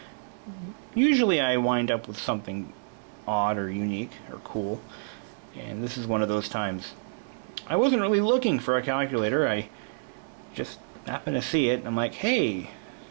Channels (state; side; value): silent; left; digital silence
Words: usually I wind up with something odd or unique or cool, and this is one of those times. I wasn't really looking for a calculator. I just happened to see it, and I'm like, hey,